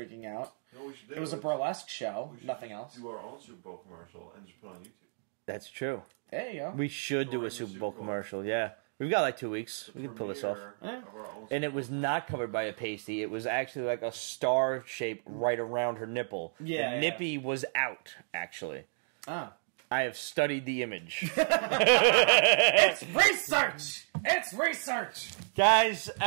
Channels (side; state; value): left; silent; digital silence